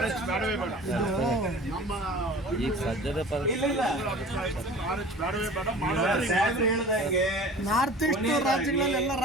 ಬೇಡವೇ ಬೇಡ. ನಮ್ಮ ಈಗ ಸದ್ಯದ ಇಲ್ಲ ಇಲ್ಲ RH ಬೇಡವೇ ಬೇಡ. ಸಾಹೇಬ್ರು ಹೇಳ್ದಂಗೆ ನಾರ್ತ್ ಈಸ್ಟ್ ರಾಜ್ಯಗಳಲ್ಲೆಲ್ಲ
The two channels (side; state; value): both; normal; correlation 0.42